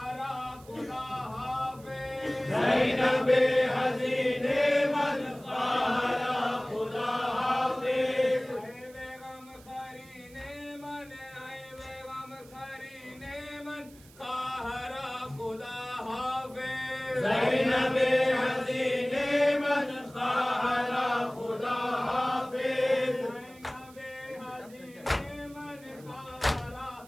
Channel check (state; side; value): noise; right; hiss, 24 dB below the sound